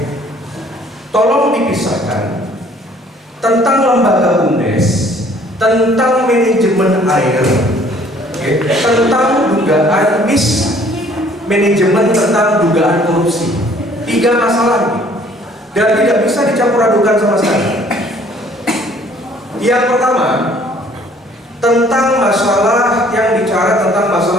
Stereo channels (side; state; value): both; normal; correlation 0.58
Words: Tolong dipisahkan tentang lembaga UNDES, tentang manajemen air, okay? Tentang dugaan manajemen, tentang dugaan korupsi. 3 masalah ini, dan tidak bisa dicampur adukan sama sekali. Yang pertama, tentang masalah yang bicara tentang